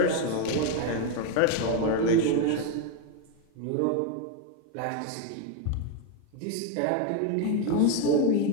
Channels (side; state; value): both; different; correlation 0.02